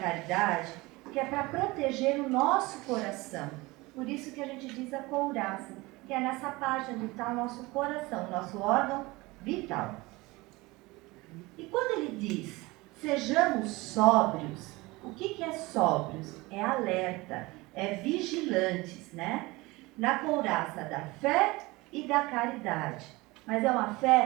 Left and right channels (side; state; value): left; quieter; 22.2 dB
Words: que é para proteger o nosso coração. Por isso que a gente diz a couraça, que é nessa parte onde está o nosso coração, o nosso órgão vital. E quando ele diz, sejamos sóbrios, o que é sóbrios? É alerta, é vigilantes, na couraça da fé e da caridade. Mas é uma